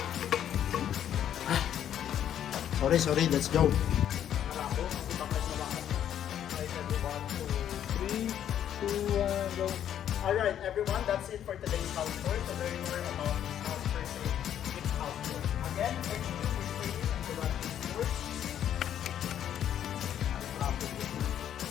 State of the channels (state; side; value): quieter; right; 10.2 dB